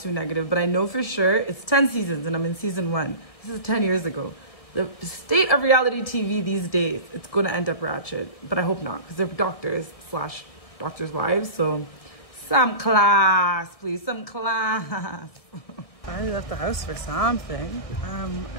negative, but I know for sure it's 10 seasons and I'm in season 1. This is 10 years ago. The state of reality TV these days, it's going to end up ratchet, but I hope not because they're doctors / doctors' wives, so some class, please, some class. I left the house for something. I don't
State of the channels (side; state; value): right; late; 1.6 ms